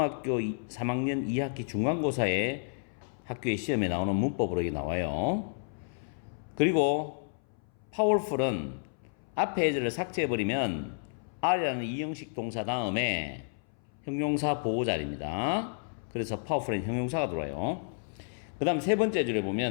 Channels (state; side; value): silent; right; 57 dB below the other